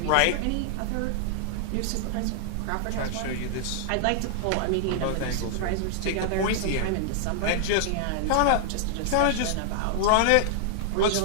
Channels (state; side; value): different; both; correlation -0.01